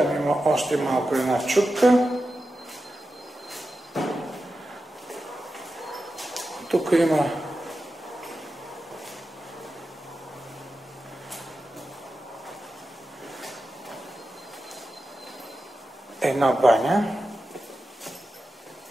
има още малко една чупка. Тук има една баня.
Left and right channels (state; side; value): normal; both; correlation 0.91